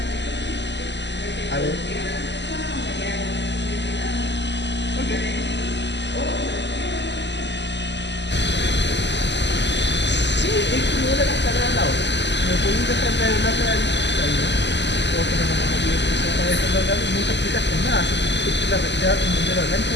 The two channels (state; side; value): late; right; 0.51 ms